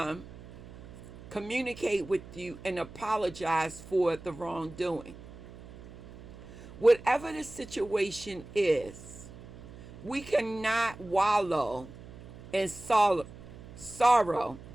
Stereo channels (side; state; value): right; noise; hum, 17 dB below the sound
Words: communicate with you and apologize for the wrongdoing. Whatever the situation is, we cannot wallow in sorrow.